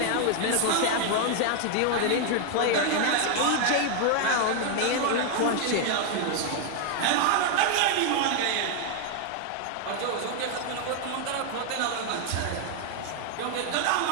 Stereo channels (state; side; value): different; both; correlation 0.00